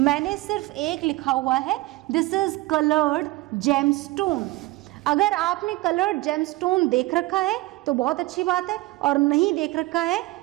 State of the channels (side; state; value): left; quieter; 20.1 dB